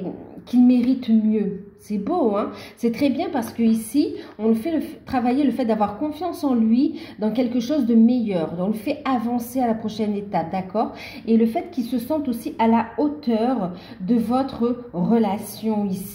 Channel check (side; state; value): both; identical; correlation 1.00